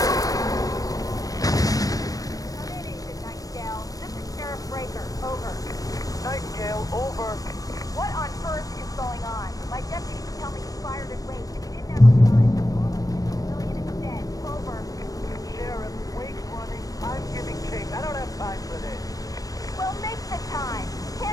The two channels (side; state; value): right; late; 0.17 ms